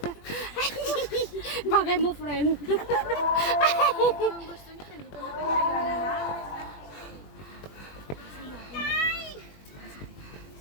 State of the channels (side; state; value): right; late; 21 ms